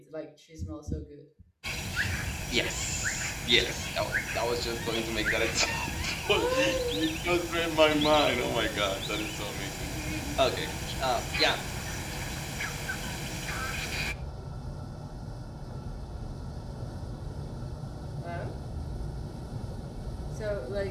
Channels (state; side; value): identical; both; correlation 1.00